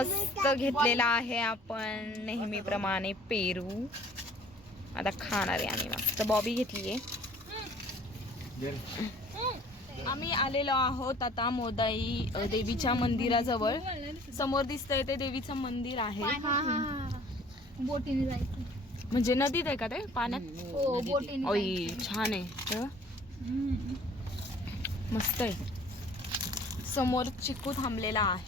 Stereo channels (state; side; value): normal; both; correlation 0.52